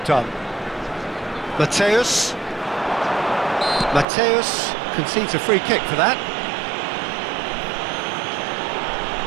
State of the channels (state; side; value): drops out; left; at 4.0 s